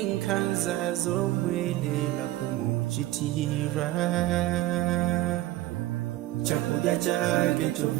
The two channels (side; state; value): left; quieter; 16.0 dB